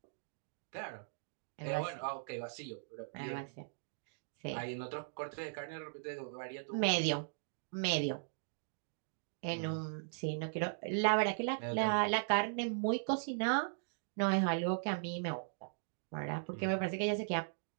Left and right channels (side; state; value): left; silent; digital silence